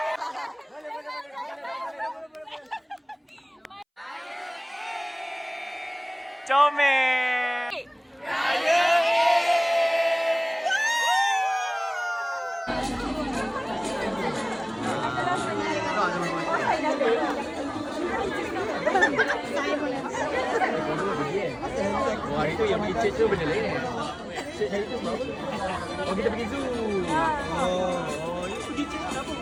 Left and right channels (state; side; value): identical; both; correlation 1.00